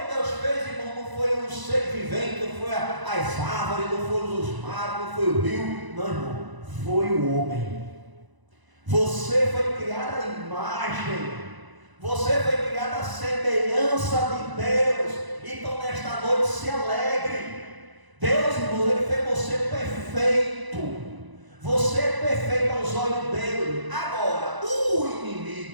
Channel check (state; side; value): late; left; 1.0 ms